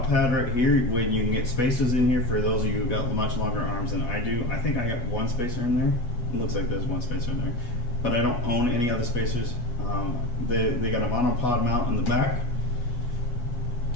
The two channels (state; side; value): late; right; 8.2 ms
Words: pad right here, when you can get spacers in here for those of you who got much longer arms than I do. I think I got one spacer in there. It looks like there's one spacer in there, but I don't own any other spacers. They got a monopod mount in the back,